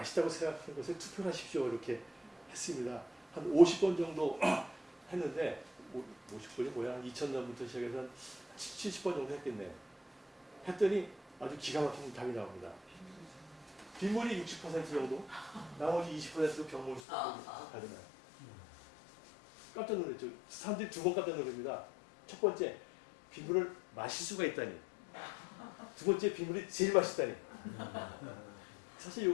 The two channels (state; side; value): drops out; right; at 17.0 s